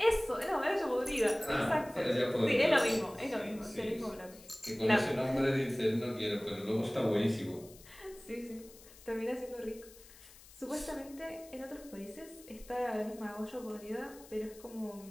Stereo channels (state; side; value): noise; left; hiss, 21 dB below the sound